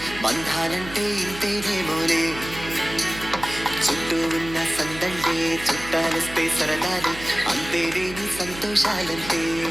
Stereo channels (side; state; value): right; noise; hum, 13 dB below the sound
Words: బంధాలంటే ఇంతేనేమోలే చుట్టూ ఉన్న సందళ్ళే చుట్టాలొస్తే సరదాలే అంతేలేని సంతోషాలంటే